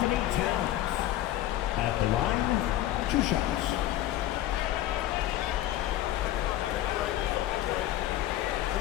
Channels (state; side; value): quieter; right; 13.7 dB